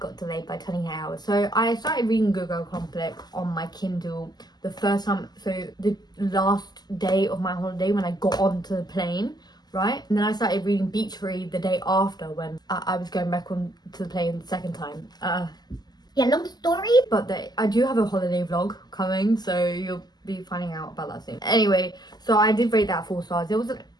delayed by 28 hours, so I started reading Good Girl Complex on my Kindle the first time, so the last day of my holiday when I got onto the plane, right? And then I started reading Beach Read the day after when I was going back on to the plane the second time. Yeah, long story, but I do have a holiday vlog coming, so you'll be finding out about that soon. Anyway, so I did rate that 4 stars. It wasn't,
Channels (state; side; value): late; right; 0.20 ms